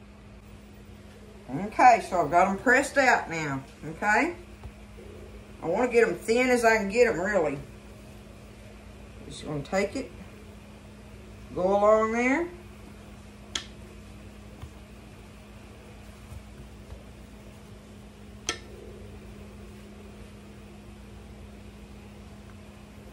Okay, so I've got them pressed out now, okay? I want to get them thin as I can get them, really. Just going to take it, go along there,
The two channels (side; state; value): both; identical; correlation 1.00